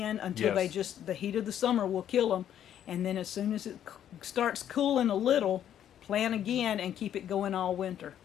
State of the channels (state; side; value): quieter; right; 10.3 dB